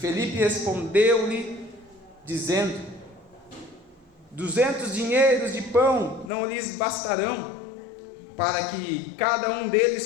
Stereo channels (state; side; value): drops out; right; at 6.3 s